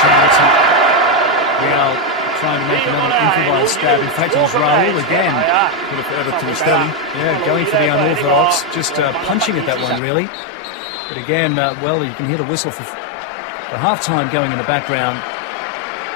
啱啱 trying to make another improvised stab. In fact, it was Raul again. Could have added to Stelly. Yeah, going for the unorthodox, just punching at that one, really. Again, well, you can hear the whistle for the half-time going in the background.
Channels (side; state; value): right; drops out; at 10.0 s